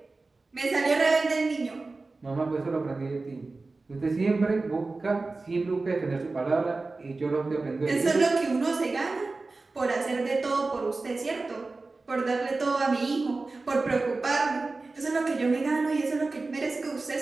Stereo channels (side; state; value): left; quieter; 3.6 dB